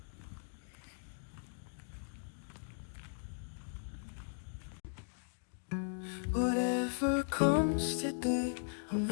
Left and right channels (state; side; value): silent; right; digital silence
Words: Whatever comes today, I'm